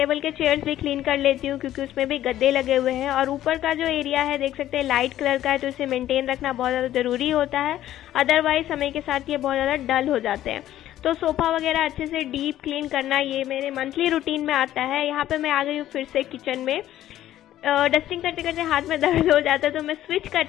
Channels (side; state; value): right; quieter; 12.9 dB